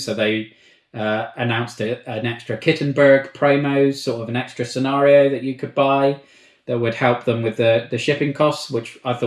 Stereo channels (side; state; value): both; identical; correlation 1.00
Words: they announced an extra Kittenberg promo, sort of an extra scenario that you could buy that would help them with the shipping costs, which I